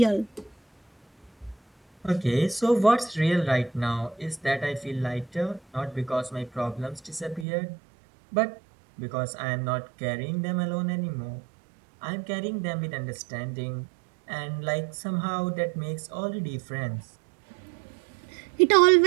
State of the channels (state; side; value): drops out; left; at 7.5 s